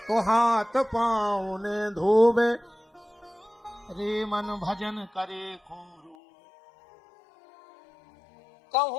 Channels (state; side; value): drops out; right; at 6.2 s